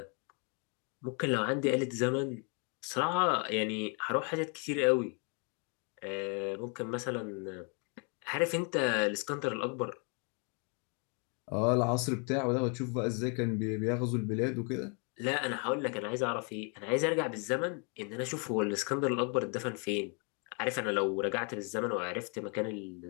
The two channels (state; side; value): quieter; right; 36.6 dB